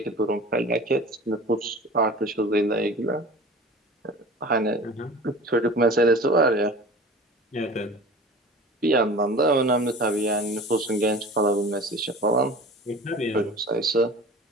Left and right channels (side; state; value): both; normal; correlation 0.39